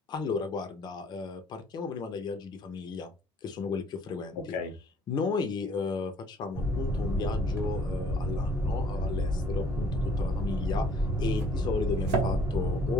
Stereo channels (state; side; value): normal; both; correlation 0.58